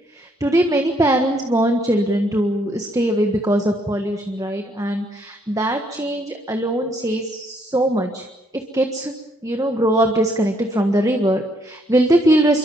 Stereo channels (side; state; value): both; normal; correlation 0.70